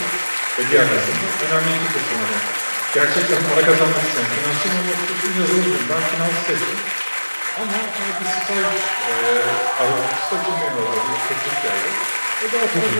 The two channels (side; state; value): both; inverted; correlation -1.00